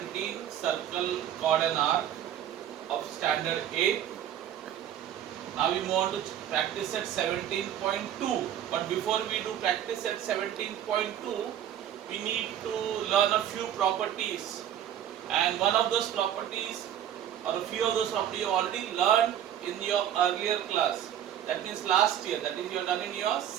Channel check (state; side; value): quieter; left; 10.4 dB